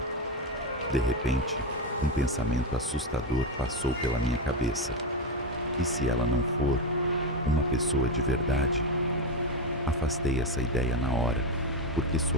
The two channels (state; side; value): normal; both; correlation 0.11